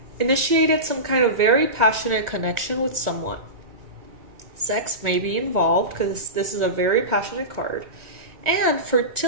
initiated some kind of very passionate connection with someone. Sex may be involved because this is a very passionate card, and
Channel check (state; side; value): late; left; 2.0 ms